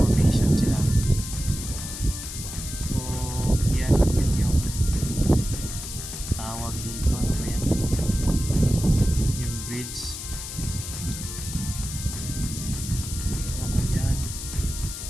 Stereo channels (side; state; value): left; noise; hiss, 8 dB below the sound